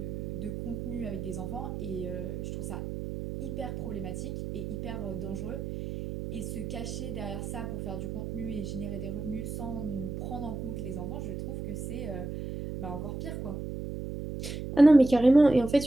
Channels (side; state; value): right; noise; hum, 6 dB below the sound